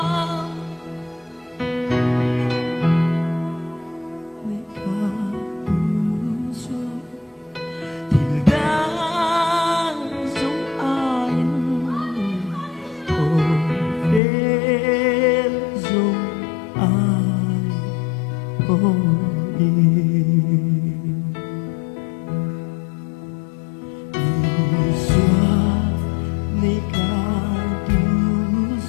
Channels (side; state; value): right; drops out; at 14.2 s